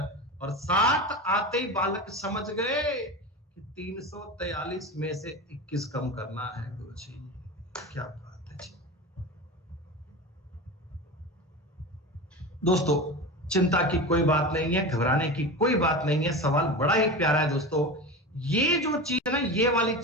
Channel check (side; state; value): both; normal; correlation 0.27